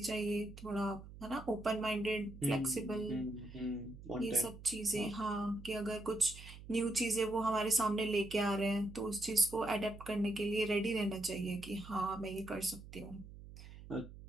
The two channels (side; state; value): right; noise; hum, 15 dB below the sound